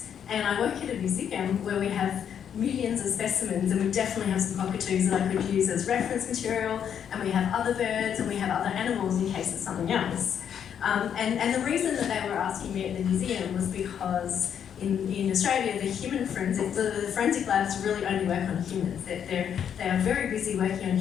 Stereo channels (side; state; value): right; quieter; 8.5 dB